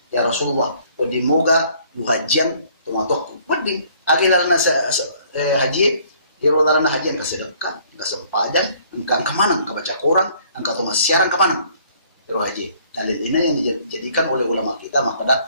Ya Rasulullah, di moga hajian tumatok. Padi agilalna haji, dirolalna hajian ka sedekah, ka sempadan, engkang ka manang ka baca Quran, engkau tuh siaran ka manang. Ro haji. Dalil ini yang dijadikan oleh ulama kita maka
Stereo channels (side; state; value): both; inverted; correlation -0.60